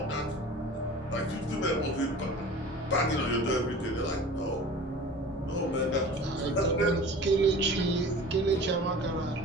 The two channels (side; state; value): both; normal; correlation 0.40